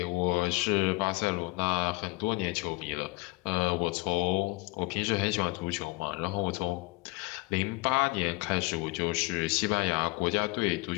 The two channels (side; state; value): right; quieter; 24.4 dB